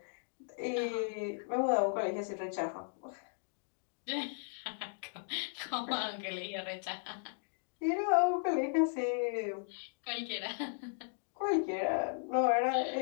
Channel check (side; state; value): right; silent; digital silence